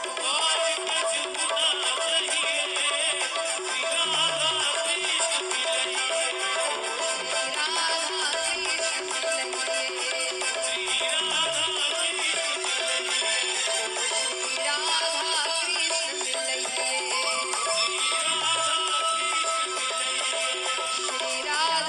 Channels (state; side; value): identical; both; correlation 1.00